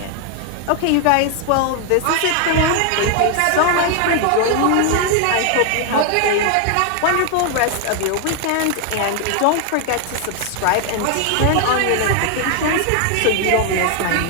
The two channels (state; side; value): different; both; correlation 0.00